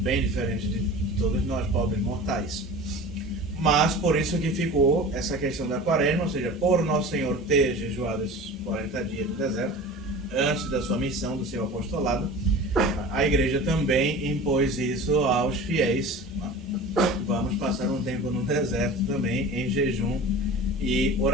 diferente de todos nós, pobres mortais. Mas por isso que ficou essa questão da quaresma, ou seja, por Nosso Senhor ter jejuado esses 40 dias no deserto, antes da sua missão, do seu apostolado, a igreja também impôs isso aos fiéis. Vamos passar um tempo no deserto também, em jejum e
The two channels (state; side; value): normal; both; correlation 0.37